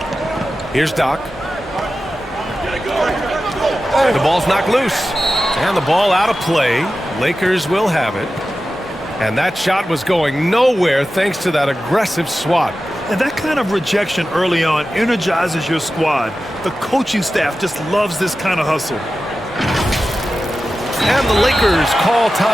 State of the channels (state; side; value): normal; both; correlation 0.93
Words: Here's Doc. The ball's knocked loose. And the ball out of play. Lakers will have it. And that shot was going nowhere thanks to that aggressive swat. And that kind of rejection early on energizes your squad. The coaching staff just loves this kind of hustle. And the Lakers call